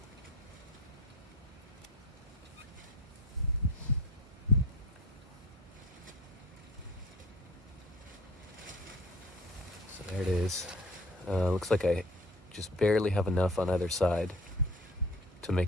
So there it is. Looks like I just barely have enough on either side to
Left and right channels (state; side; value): normal; both; correlation 0.43